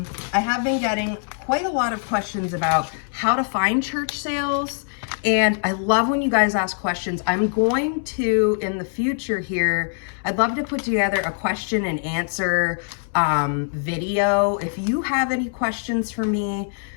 have been getting quite a lot of questions about how to find church sales. And I love when you guys ask questions. I'm going to, in the future here, I'd love to put together a question and answer video. If you have any questions for me,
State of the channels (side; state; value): right; silent; 64 dB below the other